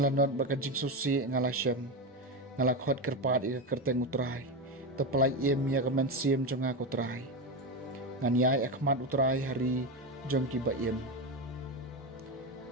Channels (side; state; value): both; normal; correlation 0.15